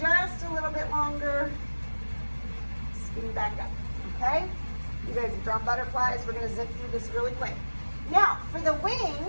just a little bit longer, skinny back up. Okay? You guys have drawn butterflies. We're going to zip through this really quick. Now, for the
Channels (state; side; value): inverted; both; correlation -1.00